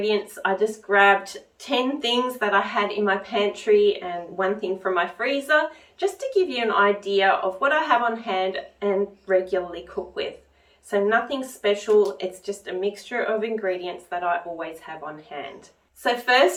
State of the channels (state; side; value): identical; both; correlation 1.00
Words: I just grabbed 10 things that I had in my pantry and one thing from my freezer, just to give you an idea of what I have on hand and regularly cook with. So nothing special, it's just a mixture of ingredients that I always have on hand. So